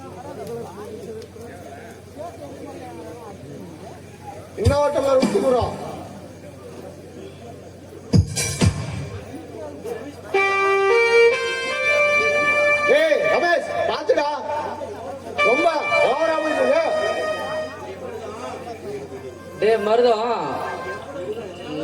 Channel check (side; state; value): both; identical; correlation 1.00